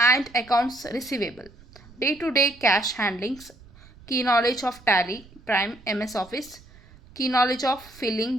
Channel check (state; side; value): noise; right; rumble, 24 dB below the sound